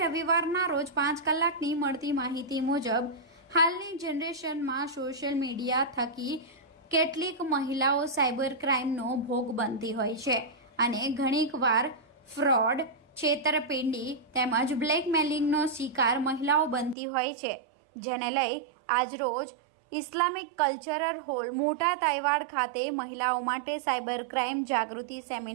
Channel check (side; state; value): left; drops out; at 16.9 s